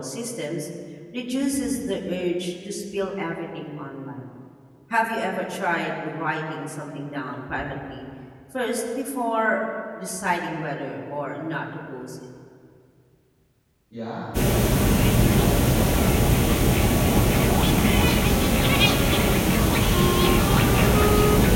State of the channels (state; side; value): identical; both; correlation 1.00